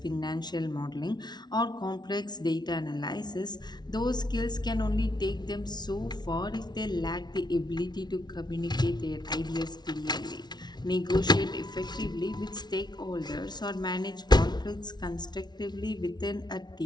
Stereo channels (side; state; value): right; late; 0.20 ms